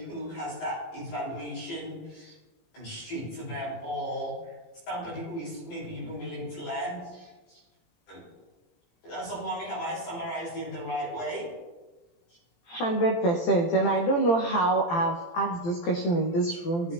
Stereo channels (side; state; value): right; late; 17 ms